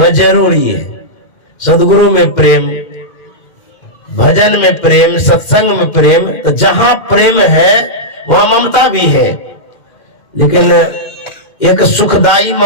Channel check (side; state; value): right; late; 2.4 ms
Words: जरूरी है। सदगुरु में प्रेम, भजन में प्रेम, सत्संग में प्रेम, तो जहां प्रेम है वहां ममता भी है, लेकिन एक सुखदाई